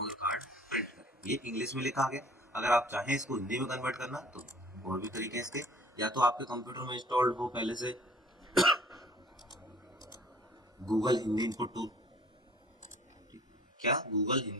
कार्ड प्रिंट करें। ये इंग्लिश में लिखा आ गया। अगर आप चाहें इसको हिंदी में कन्वर्ट करना तो और भी तरीके हैं इसके, या तो आपके कंप्यूटर में इंस्टॉल्ड हो पहले से गूगल हिंदी इनपुट टूल, क्या गूगल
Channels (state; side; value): normal; both; correlation 0.52